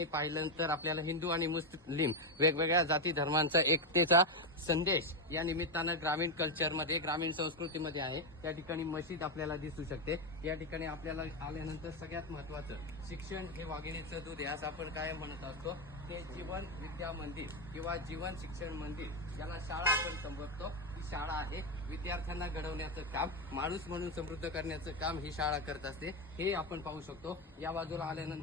पाहिल्यानंतर आपल्याला हिंदू आणि मुस्लिम वेगवेगळ्या जाती धर्मांचा एकतेचा संदेश या निमित्तानं ग्रामीण कल्चरमध्ये, ग्रामीण संस्कृतीमध्ये आहे. या ठिकाणी मशीद आपल्याला दिसू शकते. या ठिकाणी आपल्याला आल्यानंतर सगळ्यात महत्त्वाचं शिक्षण हे वाघिणीचं दूध आहे असं आपण काय म्हणत असतो. ते जीवन विद्या मंदिर किंवा जीवन शिक्षण मंदिर याला शाळा आपण संबोधतो. ही शाळा आहे विद्यार्थ्यांना घडवण्याचं काम, माणूस म्हणून समृद्ध करण्याचं काम ही शाळा करत असते. हे आपण पाहू शकतो. या बाजूला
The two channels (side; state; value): both; normal; correlation 0.07